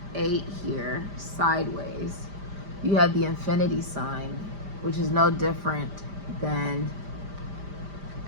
8 here sideways, you have the infinity sign, which is no different than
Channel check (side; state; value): left; late; 5.0 ms